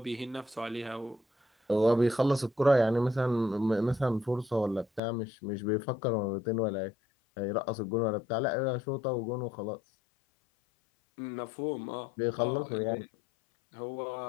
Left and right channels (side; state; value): right; drops out; at 5.0 s